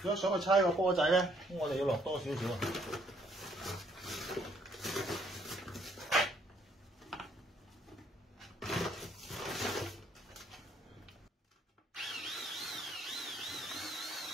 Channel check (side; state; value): both; normal; correlation 0.67